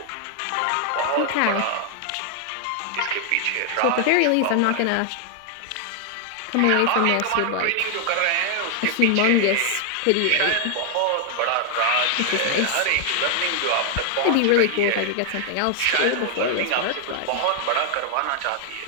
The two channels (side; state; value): both; different; correlation 0.00